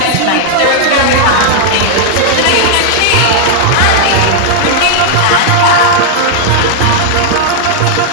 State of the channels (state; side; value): different; both; correlation 0.00